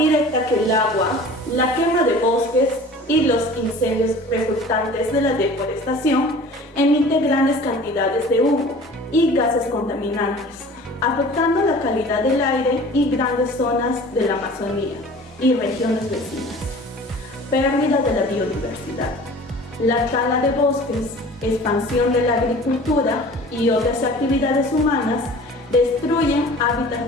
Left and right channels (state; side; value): normal; both; correlation 0.44